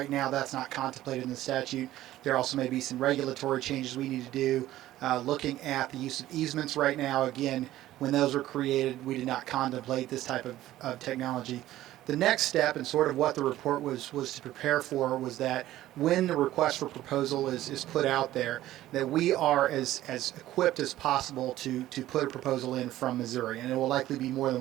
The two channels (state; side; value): quieter; left; 14.5 dB